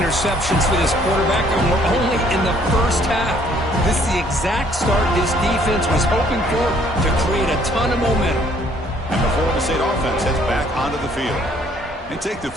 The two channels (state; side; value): normal; both; correlation 0.62